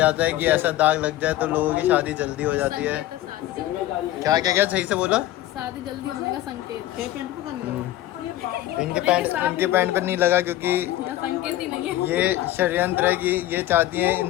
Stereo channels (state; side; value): quieter; right; 14.8 dB